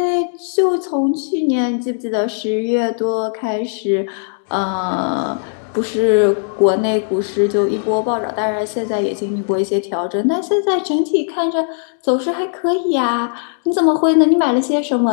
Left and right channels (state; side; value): silent; right; digital silence